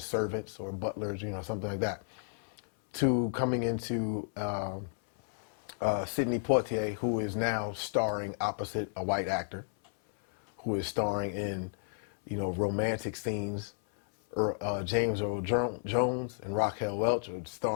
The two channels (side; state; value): right; silent; 56 dB below the other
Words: servants or butlers, something like that, to coming into Sidney Poitier, who is now starring opposite a white actor, who is starring in, romantic scenes. James Earl Jones and Raquel Welch are